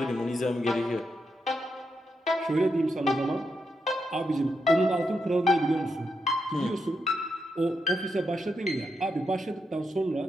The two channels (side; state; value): both; normal; correlation 0.83